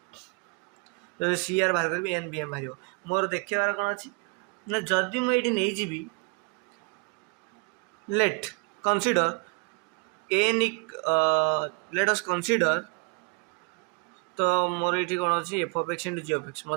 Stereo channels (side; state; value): left; quieter; 32.8 dB